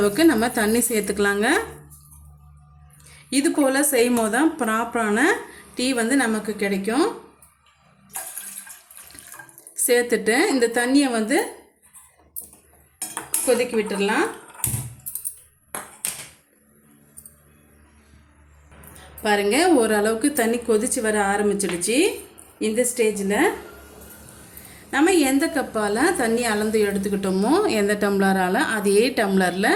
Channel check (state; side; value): identical; both; correlation 1.00